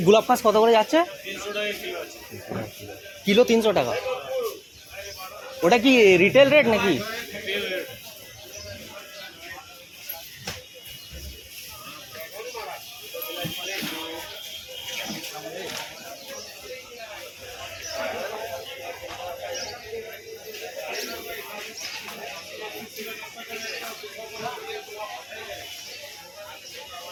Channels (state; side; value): identical; both; correlation 1.00